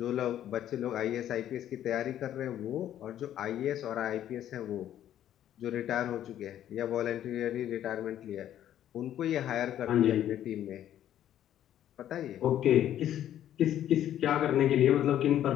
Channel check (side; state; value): right; quieter; 11.4 dB